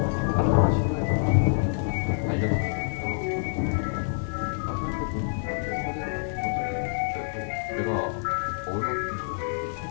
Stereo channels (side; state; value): right; silent; digital silence